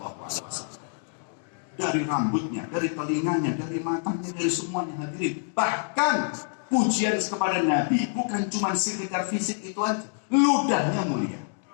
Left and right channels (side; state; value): right; silent; digital silence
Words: Dari rambutnya, dari telinganya, dari matanya, dari semuanya hadirin. Bahkan pujian kepada Nabi bukan cuma sekitar fisik itu aja, ludahnya mulia,